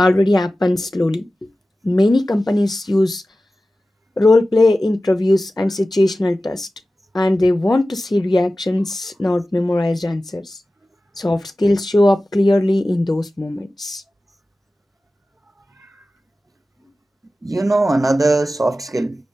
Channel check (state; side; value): normal; both; correlation 0.95